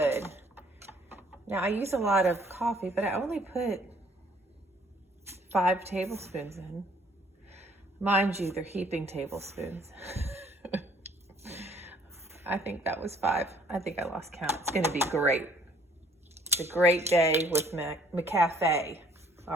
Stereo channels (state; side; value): normal; both; correlation 0.60